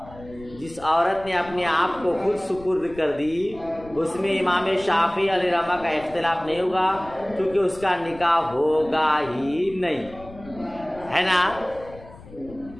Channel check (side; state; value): left; noise; rumble, 19 dB below the sound